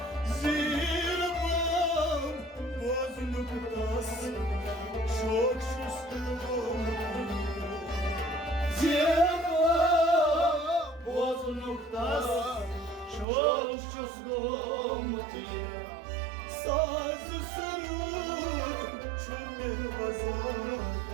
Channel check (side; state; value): left; drops out; at 13.2 s